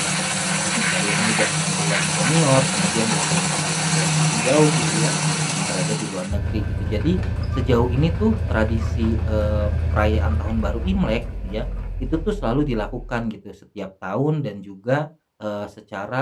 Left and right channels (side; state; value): both; identical; correlation 1.00